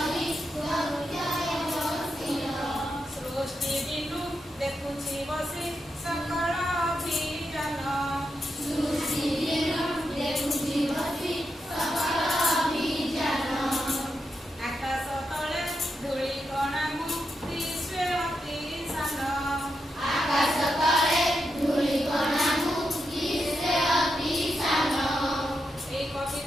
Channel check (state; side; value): normal; both; correlation 0.85